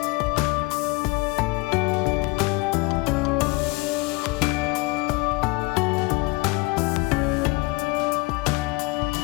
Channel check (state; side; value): quieter; right; 25.1 dB